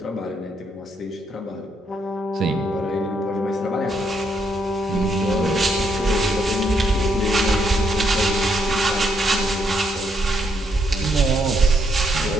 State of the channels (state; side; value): normal; both; correlation 0.75